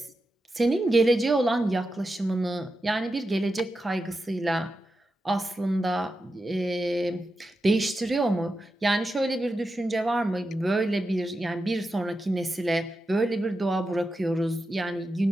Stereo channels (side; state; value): both; normal; correlation 0.90